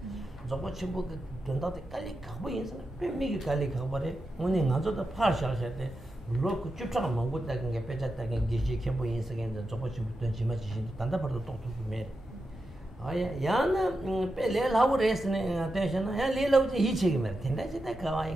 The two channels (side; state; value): both; normal; correlation 0.89